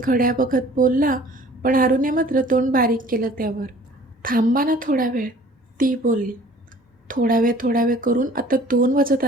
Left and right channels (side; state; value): both; normal; correlation 0.51